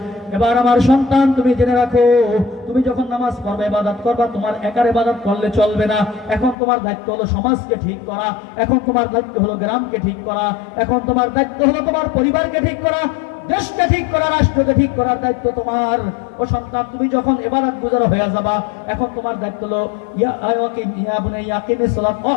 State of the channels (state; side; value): drops out; right; at 6.6 s